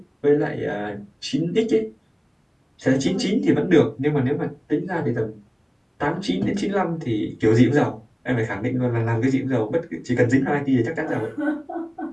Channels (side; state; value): both; identical; correlation 1.00